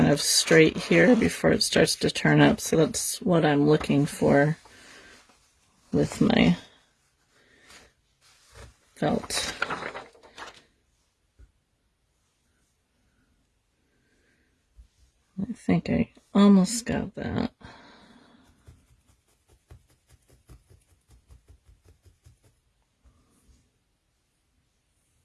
of straight here before it starts to turn up. So that's what I'm looking for with my felt. I think I almost got that.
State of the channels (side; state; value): both; identical; correlation 1.00